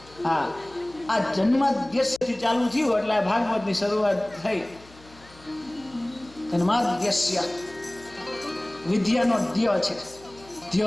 હા આ જન્માદ્યસ્યથી ચાલુ થયું એટલે આ ભાગવતની શરૂઆત થઈ. જન્માદ્યસ્ય વિદ્યાનો ધ્ય છે,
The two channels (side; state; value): left; noise; hum, 24 dB below the sound